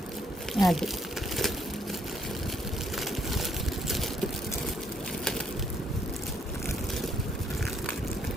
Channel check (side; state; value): both; normal; correlation 0.70